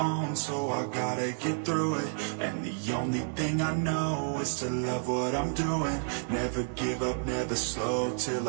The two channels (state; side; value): silent; left; digital silence